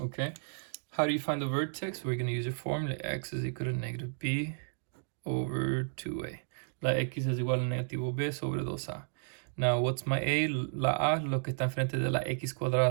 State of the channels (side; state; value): left; silent; digital silence